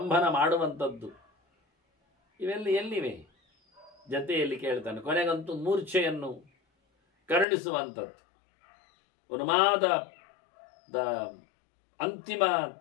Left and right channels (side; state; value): right; drops out; at 7.5 s